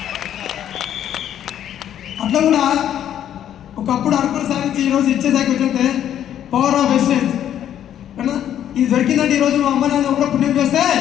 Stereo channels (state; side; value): quieter; right; 10.5 dB